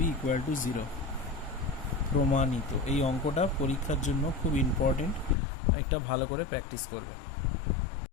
ইকুয়াল টু 0। প্রমাণিত। এই অঙ্কটা পরীক্ষার জন্য খুব ইম্পর্টেন্ট, একটা ভালো করে প্র্যাকটিস করবে।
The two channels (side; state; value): right; drops out; at 5.4 s